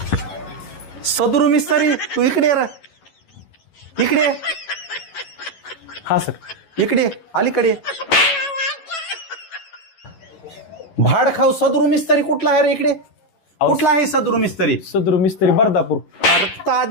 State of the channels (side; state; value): right; late; 11 ms